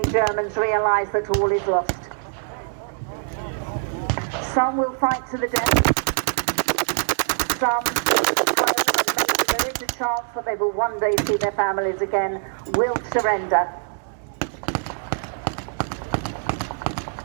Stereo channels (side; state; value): left; silent; digital silence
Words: Germans realise that all is lost. Some will fight to the death. Some will prone, and maybe there is a chance that they will one day see their families again, will surrender.